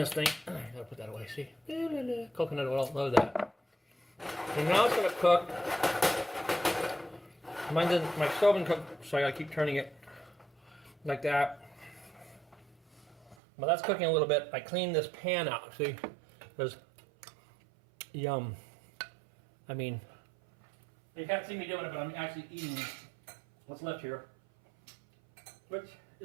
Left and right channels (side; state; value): left; drops out; at 13.4 s